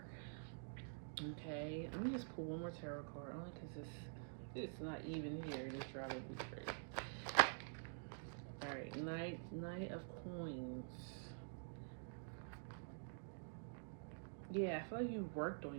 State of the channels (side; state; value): left; silent; digital silence